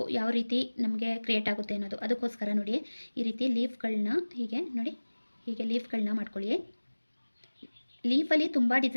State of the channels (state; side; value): inverted; both; correlation -1.00